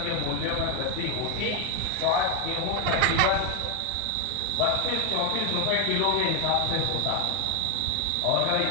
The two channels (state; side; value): different; both; correlation 0.01